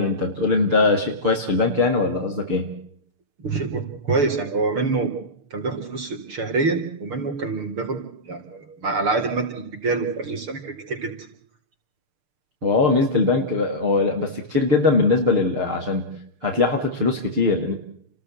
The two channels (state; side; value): late; left; 6.7 ms